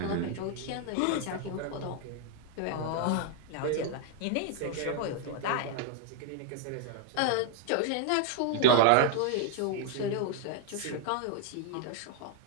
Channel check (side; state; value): both; different; correlation 0.00